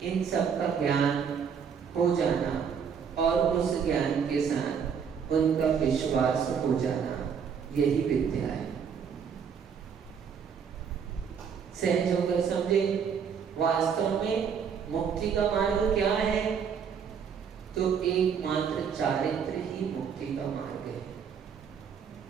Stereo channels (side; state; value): left; quieter; 7.0 dB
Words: इन सब का ज्ञान हो जाना और उस ज्ञान के साथ उनका विश्वास हो जाना, यही विद्या है। सहज होकर समझे। वास्तव में मुक्ति का मार्ग क्या है? तो एकमात्र चारित्र ही मुक्ति का मार्ग है।